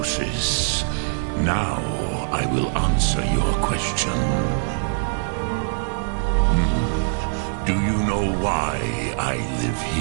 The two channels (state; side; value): silent; left; digital silence